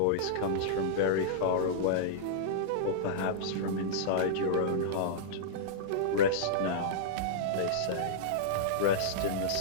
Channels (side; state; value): both; different; correlation -0.03